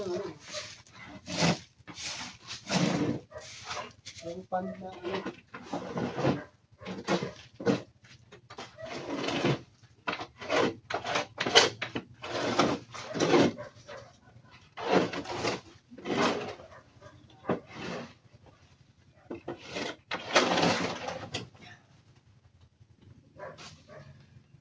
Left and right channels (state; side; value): identical; both; correlation 1.00